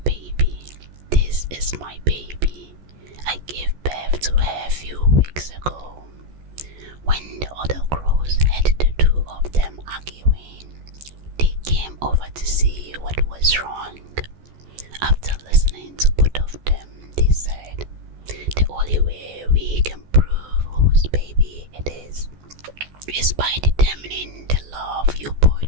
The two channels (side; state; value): left; late; 14 ms